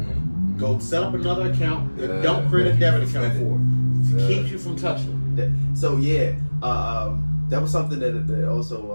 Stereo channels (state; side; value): inverted; both; correlation -1.00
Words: Go set up another account and don't create a debit account for it. It keeps you from touching it. So that was something that